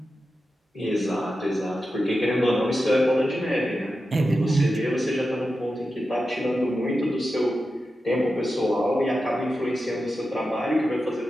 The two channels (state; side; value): normal; both; correlation 0.91